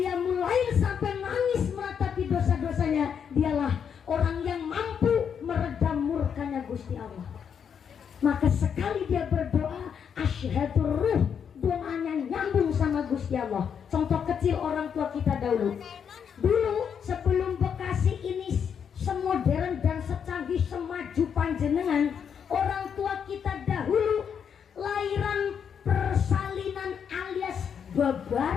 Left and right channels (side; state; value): right; quieter; 7.5 dB